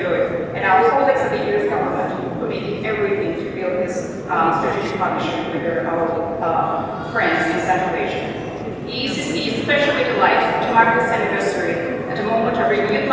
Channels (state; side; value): identical; both; correlation 1.00